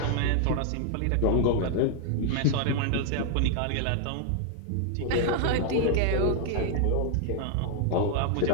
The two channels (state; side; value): different; both; correlation 0.00